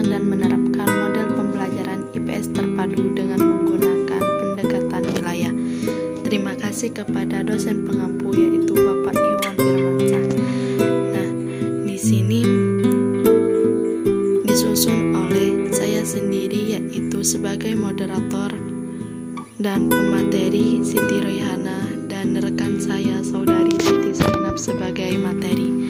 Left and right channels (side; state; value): both; identical; correlation 1.00